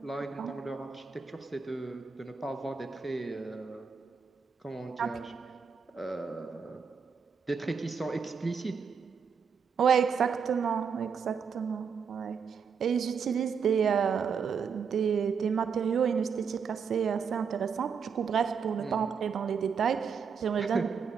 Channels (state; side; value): quieter; left; 6.2 dB